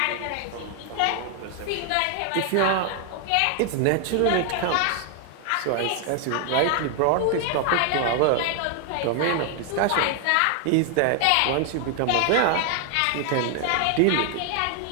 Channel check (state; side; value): different; both; correlation 0.00